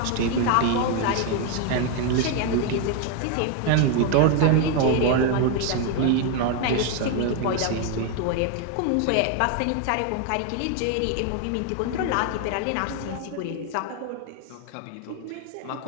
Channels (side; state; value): both; different; correlation 0.01